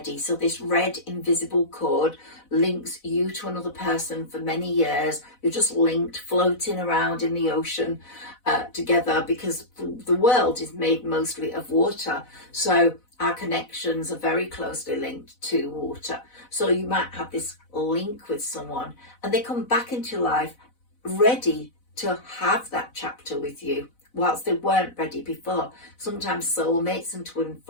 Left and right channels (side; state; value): right; late; 4.0 ms